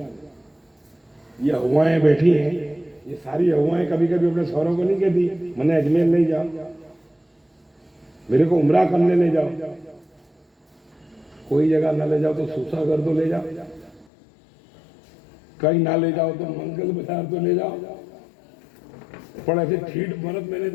یہ ہوائیں بیٹھی ہیں، یہ ساری ہوائیں کبھی کبھی اپنے شوہروں کو نہیں کہتی میں نے اجمیر لے جاؤ، میرے کو عمرہ کرنے لے جاؤ، کوئی جگہ نہ لے جاؤ تو سوسا کر دو لے جاؤ، کہیں نہ لے جاؤ تو منگل بازار تو لے جاؤ۔ پر ایسے ٹھیٹ مرد میں نے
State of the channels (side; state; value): right; drops out; at 14.1 s